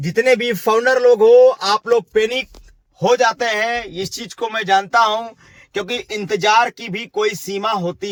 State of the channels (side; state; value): both; identical; correlation 1.00